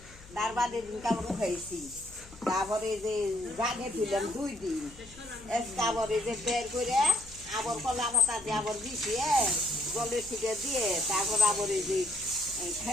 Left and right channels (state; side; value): noise; left; hum, 21 dB below the sound